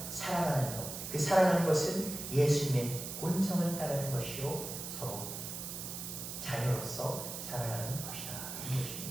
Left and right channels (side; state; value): right; noise; hiss, 7 dB below the sound